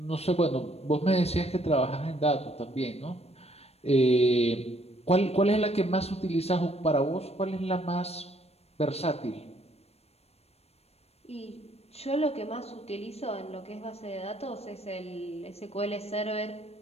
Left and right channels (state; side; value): late; right; 0.30 ms